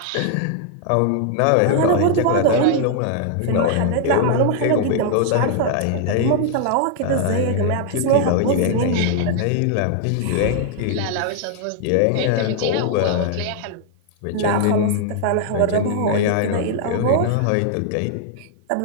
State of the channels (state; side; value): different; both; correlation 0.00